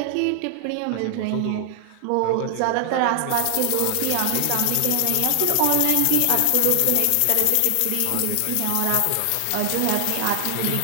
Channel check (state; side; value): different; both; correlation 0.00